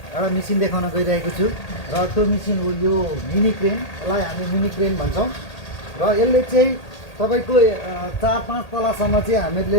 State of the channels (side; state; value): right; late; 1.8 ms